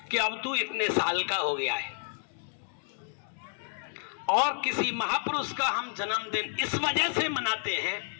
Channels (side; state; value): right; silent; digital silence